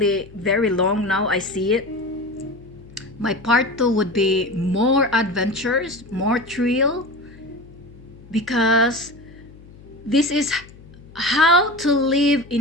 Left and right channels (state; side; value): noise; left; hum, 21 dB below the sound